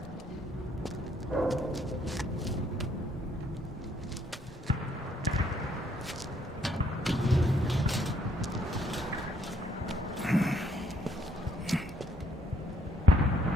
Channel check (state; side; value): normal; both; correlation 0.68